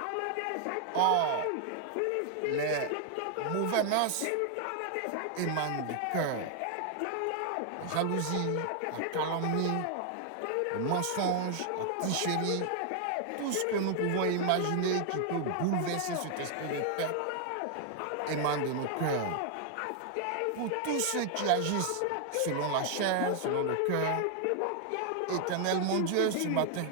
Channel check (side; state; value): both; different; correlation 0.00